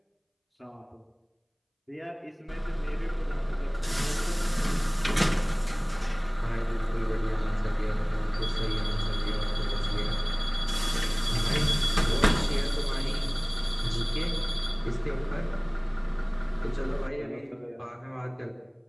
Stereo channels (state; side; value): identical; both; correlation 1.00